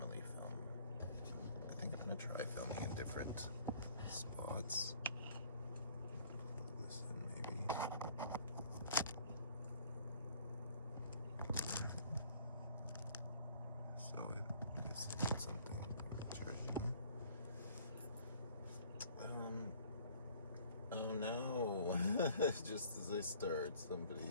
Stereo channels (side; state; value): both; inverted; correlation -0.55